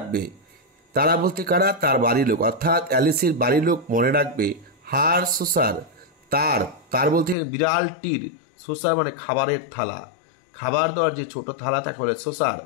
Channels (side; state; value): right; drops out; at 7.4 s